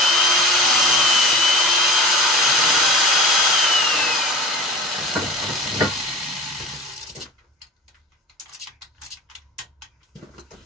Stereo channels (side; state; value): both; normal; correlation 0.35